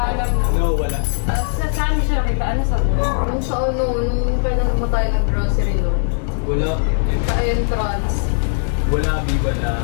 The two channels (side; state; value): right; silent; digital silence